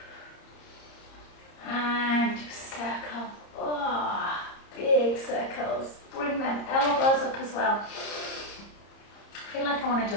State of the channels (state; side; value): late; right; 30 ms